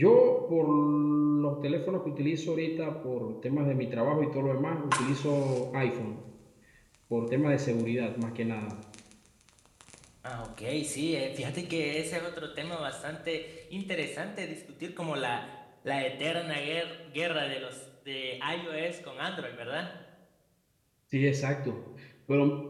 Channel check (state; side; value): identical; both; correlation 1.00